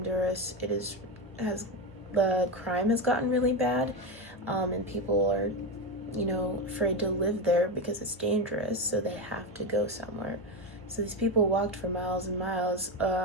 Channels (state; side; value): normal; both; correlation 0.13